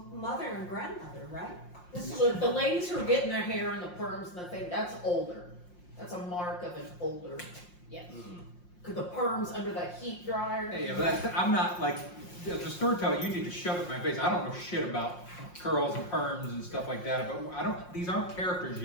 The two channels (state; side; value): late; right; 5.6 ms